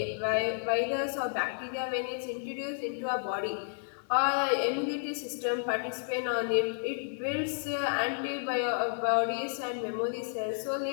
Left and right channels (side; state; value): right; silent; digital silence